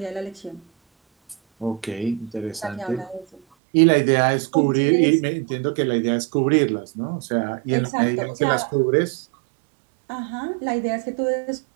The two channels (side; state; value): left; drops out; at 3.4 s